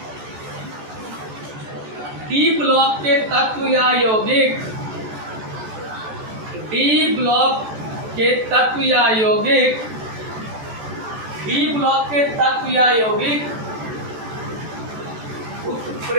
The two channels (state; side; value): late; left; 14 ms